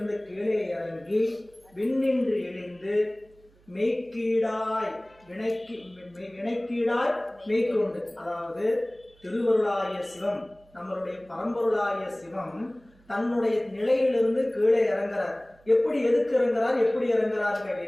கீழே இறங்கி விண்ணின்று இழிந்து மெய்க்கீடாய் வினைக்கீடாய் மெய்க்கொண்டு, அதாவது திருவருளாகிய சிவம், நம்மளுடைய பரம்பொருளாகிய சிவம் தன்னுடைய நிலையிலிருந்து கீழே இறங்குறார். எப்படி எதுக்கு இறங்குறார்? எப்படி இறங்குறாரு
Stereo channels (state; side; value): noise; right; hum, 30 dB below the sound